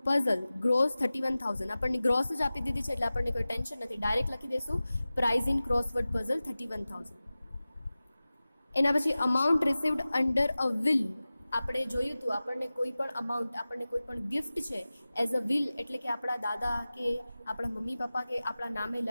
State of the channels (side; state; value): both; inverted; correlation -0.97